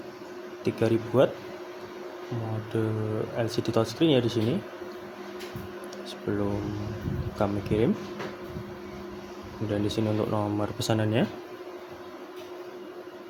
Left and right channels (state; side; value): identical; both; correlation 1.00